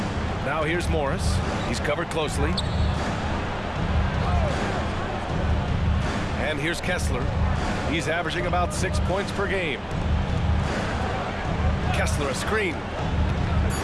Now here's Morris. He's covered closely. And here's Kessler. He's averaging about 6 points per game. Kessler a screen.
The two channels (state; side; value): identical; both; correlation 1.00